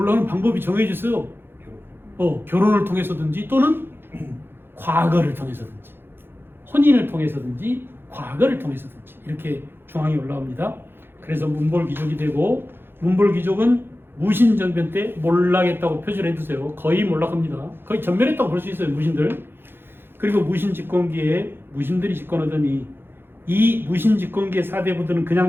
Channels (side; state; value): left; late; 0.10 ms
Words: 방법이 정해져 있어요. 결혼을 통해서든지 또는 과거를 통해서든지 혼인을 통해서든지 과거를 통해서든지 이렇게 중앙에 올라옵니다. 그래서 문벌귀족이 되고 문벌귀족은 무신정변 때 몰락했다고 표시를 해두세요. 거의 몰락합니다. 거의 전멸했다고 볼 수 있어요. 무신들. 그리고 무신집권기에 무신들이 집권하더니 이 무신집권기의 사대부들은 그냥